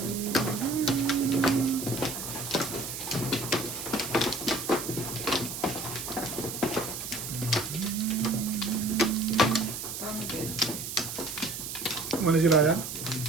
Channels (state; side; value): noise; right; hiss, 6 dB below the sound